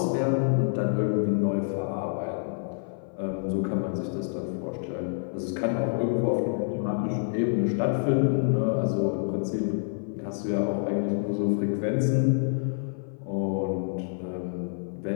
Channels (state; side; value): silent; right; 55 dB below the other